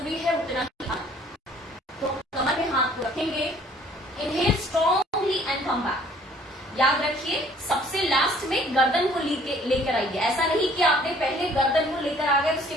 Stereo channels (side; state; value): both; normal; correlation 0.56